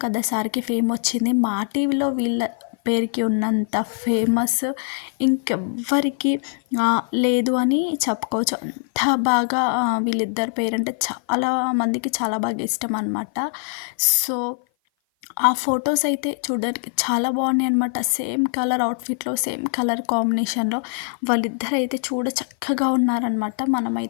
కదా సార్కి ఫేమ్ వచ్చింది. మా టీవీలో వీళ్ళ పేరుకి ఉన్నంత ఫేమస్ ఇంకెవ్వరికి లేదు అని చెప్పుకోవచ్చు. అంత బాగా వీళ్ళిద్దరి పేరంటే చాలా మందికి చాలా బాగా ఇష్టం అన్నమాట. సో ఆ ఫొటోస్ అయితే చూడడానికి చాలా బాగున్నాయి అనమాట. సేమ్ కలర్ అవుట్ఫిట్లో, సేమ్ కలర్ కాంబినేషన్లో వాళ్ళిద్దరు అయితే చూడ చక్కగా ఉన్నారనమాట.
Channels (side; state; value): right; silent; 56 dB below the other